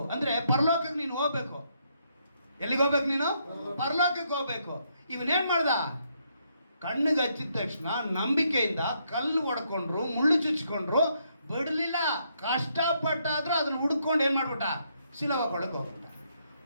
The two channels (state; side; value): inverted; both; correlation -0.75